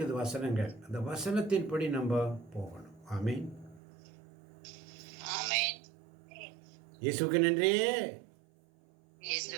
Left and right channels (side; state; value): left; drops out; at 3.8 s